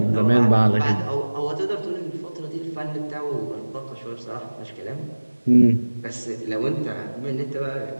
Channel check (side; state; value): both; inverted; correlation -1.00